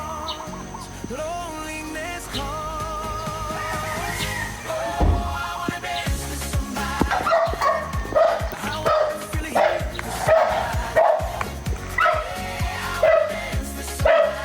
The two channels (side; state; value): both; identical; correlation 1.00